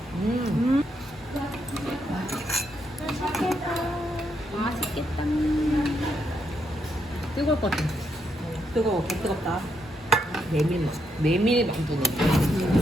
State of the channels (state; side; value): normal; both; correlation 0.78